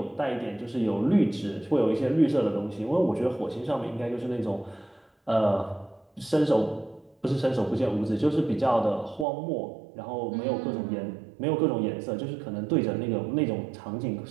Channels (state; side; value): drops out; left; at 9.2 s